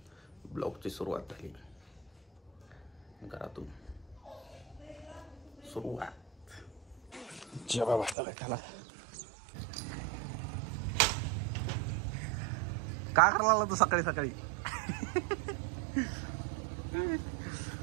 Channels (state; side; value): drops out; left; at 8.2 s